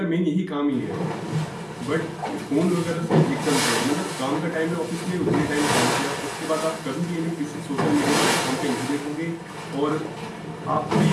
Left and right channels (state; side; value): identical; both; correlation 1.00